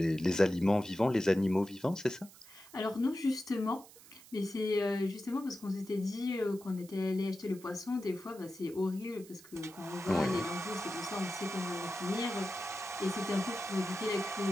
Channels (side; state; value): right; noise; hiss, 21 dB below the sound